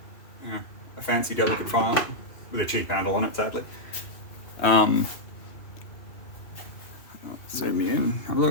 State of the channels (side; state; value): right; late; 2.6 ms